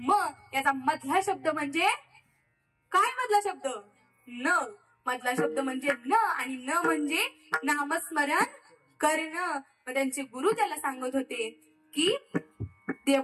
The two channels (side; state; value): both; identical; correlation 1.00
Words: याचा मधला शब्द म्हणजे काय? मधला शब्द न. मधला शब्द म्हणजे न, आणि न म्हणजे नामस्मरण करणं. मग त्यांचे गुरु त्याला सांगत होते की